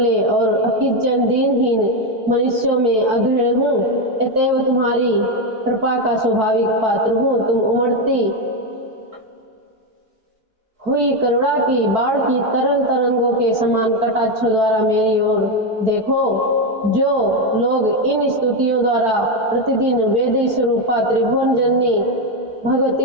और अकिंचन दीनहीन मनुष्यों में अग्रणी हूँ। अतएव तुम्हारी कृपा का स्वाभाविक पात्र हूँ। तुम उमड़ती हुई करुणा की बाढ़ की तरंग तरंगों के समान कटाक्षों द्वारा मेरी ओर देखो। जो लोग इन स्तुतियों द्वारा प्रतिदिन वेद स्वरूपा त्रिभुवन जननी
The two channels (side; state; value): left; late; 4.6 ms